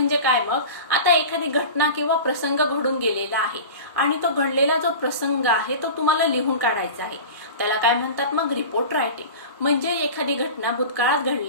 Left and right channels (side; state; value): both; inverted; correlation -0.33